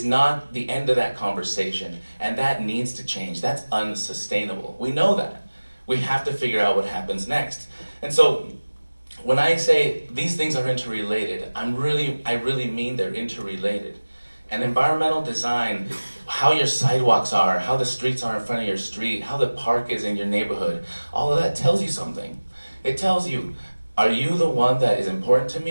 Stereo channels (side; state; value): both; inverted; correlation -1.00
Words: not the end of that conversation, and that needs to change. That's unsustainable. We know that. We have to figure out what happens next. And so when I say these things are interrelated, I really mean they're interrelated. And environmental design, how your sidewalks are, how the streets are in front of your street, how the park is in your neighborhood, all of that tells you something. It tells you, are you the one that is important to